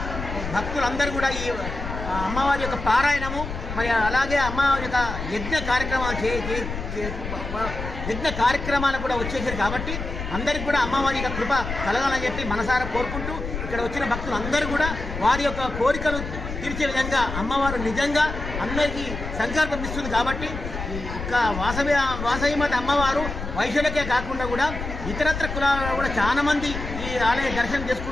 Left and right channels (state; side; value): noise; left; rumble, 7 dB below the sound